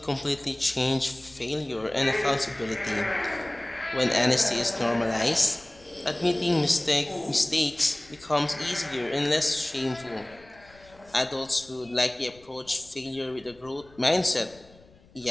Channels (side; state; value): left; noise; rumble, 26 dB below the sound